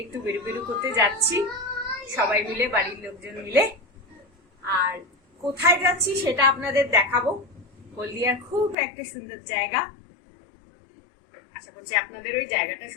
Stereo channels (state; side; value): drops out; right; at 8.8 s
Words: একটু বেরু বেরু করতে যাচ্ছি সবাই মিলে, বাড়ির লোকজন মিলে। আর কোথায় যাচ্ছি সেটা আপনাদের দেখাবো। হলদিয়ার খুব একটা সুন্দর জায়গা, আশা করছি আপনাদের ওই জায়গাটা